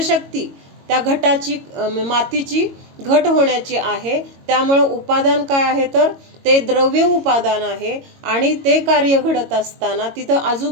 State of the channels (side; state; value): left; late; 22 ms